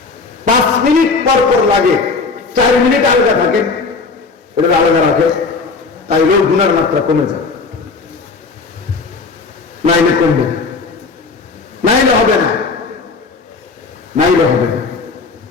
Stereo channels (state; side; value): quieter; right; 4.3 dB